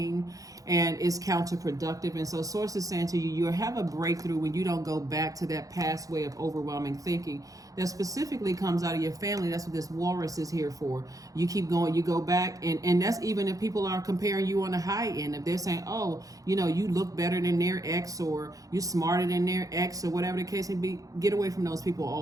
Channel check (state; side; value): late; left; 0.17 ms